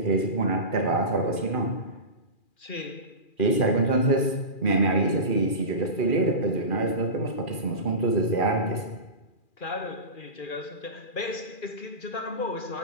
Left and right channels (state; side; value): late; right; 2.4 ms